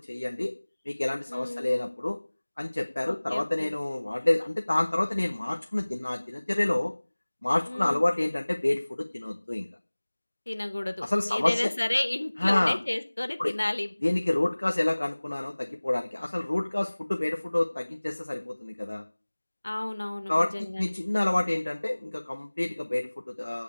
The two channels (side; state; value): both; inverted; correlation -1.00